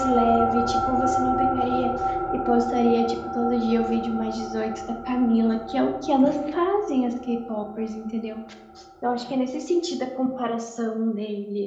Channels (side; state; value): both; identical; correlation 1.00